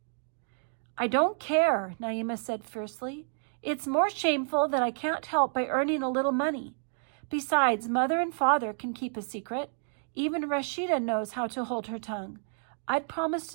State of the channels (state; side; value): silent; left; digital silence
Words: "I don't care," Naima said fiercely. "It's more shameful that I can't help by earning a little money. Besides, Mother and Father can keep a secret. Even Rashida knows how to hold her tongue. I'd promised